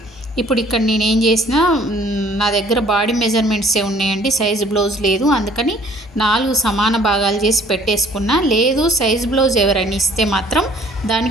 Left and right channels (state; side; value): normal; both; correlation 0.57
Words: ఇప్పుడు ఇక్కడ నేను ఏం చేసిన, నా దగ్గర బాడీ మెజర్మెంట్సే ఉన్నాయండి, సైజ్ బ్లౌజ్ లేదు, అందుకని 4 సమాన భాగాలు చేసి పెట్టేసుకున్నా. లేదు సైజ్ బ్లౌజ్ ఎవరైనా ఇస్తే మాత్రం